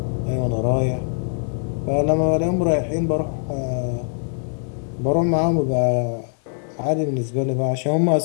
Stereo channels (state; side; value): silent; right; digital silence